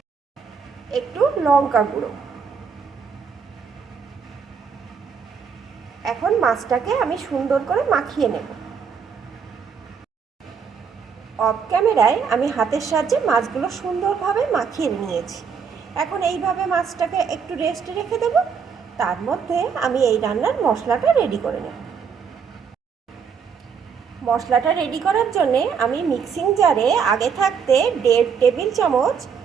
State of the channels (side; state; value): left; quieter; 6.4 dB